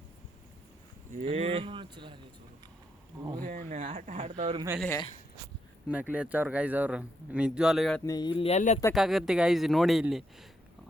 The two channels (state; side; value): normal; both; correlation 0.79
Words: ಆಟ ಆಡ್ತಾವ್ರ ಮೇಲೆ ನಕಲಿ ಹಚ್ಚವ್ರು ಗಾಯ್ಸ್. ಅವರು ನಿಜವಾಗ್ಲೂ ಹೇಳ್ತೀನಿ, ಇಲ್ಲಿ ಎಲ್ಲಿ ಎತ್ತಕ್ಕಾಗತ್ತೆ ಗಾಯ್ಸ್. ನೋಡಿ ಇಲ್ಲಿ